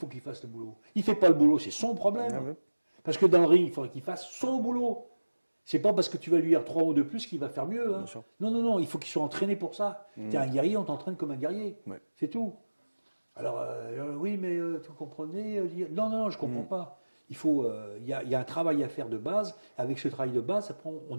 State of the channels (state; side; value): inverted; both; correlation -1.00